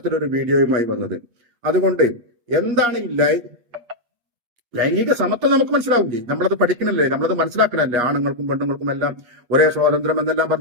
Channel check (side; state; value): left; late; 8.4 ms